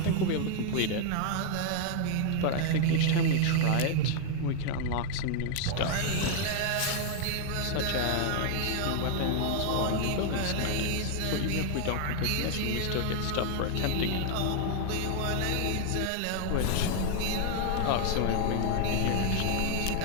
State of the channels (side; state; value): both; different; correlation 0.00